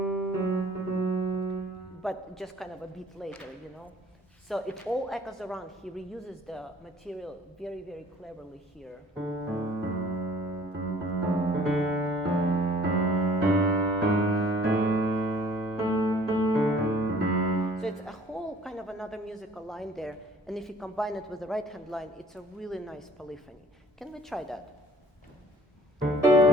but just kind of a beat later, you know? So it all echoes around. He reuses the material very, very cleverly here. So it's a whole kind of another musical line there. And if you combine it with the right hand line, it's a really nice polyphony. Can we try that?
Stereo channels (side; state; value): both; normal; correlation 0.53